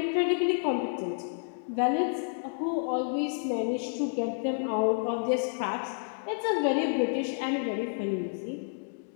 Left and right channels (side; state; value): right; silent; digital silence